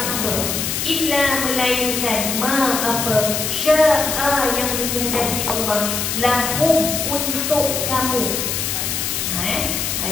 illa, melainkan, ma, apa, syaa, yang dikehendaki Allah, lahum, untuk kamu.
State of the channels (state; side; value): noise; left; hiss, 1 dB below the sound